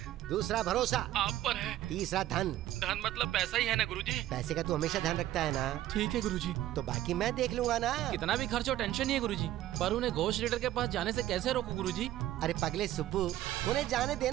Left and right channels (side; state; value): left; quieter; 13.9 dB